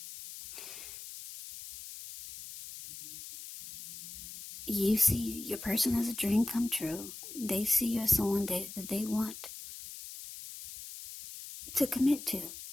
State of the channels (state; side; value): noise; left; hiss, 12 dB below the sound